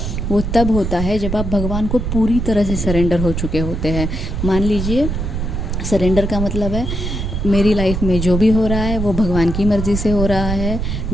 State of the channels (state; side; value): noise; right; rumble, 3 dB below the sound